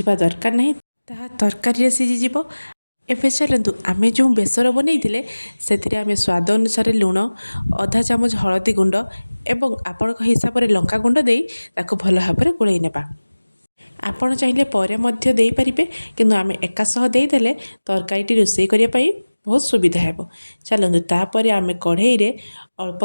दरकार नहीं, ताहा तरकारी रे सिझी जिवो। एबे चलतु आमे जो बेसर बनईथिले सेथिरे आमे स्वाद अनुसार लुण, आधा चामच हलदी गुंड एवं आपणक हिसाब रे लंका गुंड देई ताकू भल भाव में गोलई नेबा। आपण चाहिए परे मध्य देई परिबे, किंतु आमे एका सह देई देले तरकारीटी रोषेई करिया पाई बहुत सुविधा हेबो। चलतु तापर आमे कढ़ई रे अल्प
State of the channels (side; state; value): both; inverted; correlation -1.00